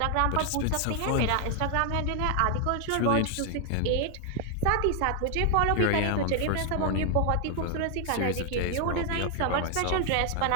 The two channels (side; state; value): both; different; correlation 0.00